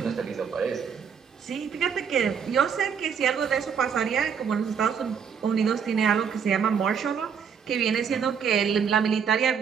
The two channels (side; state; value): left; quieter; 7.0 dB